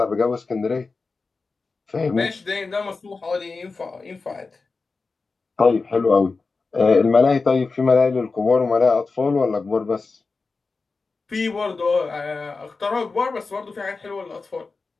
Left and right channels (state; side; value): quieter; right; 4.1 dB